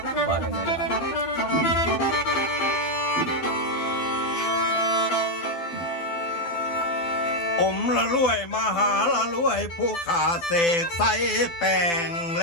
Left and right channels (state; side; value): late; right; 12 ms